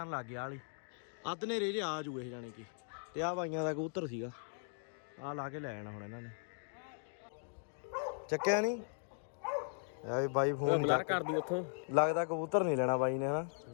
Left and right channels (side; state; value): right; silent; digital silence